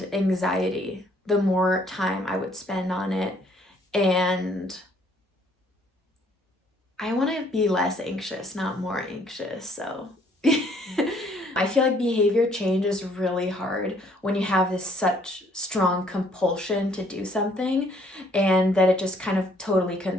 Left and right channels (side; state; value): both; normal; correlation 0.63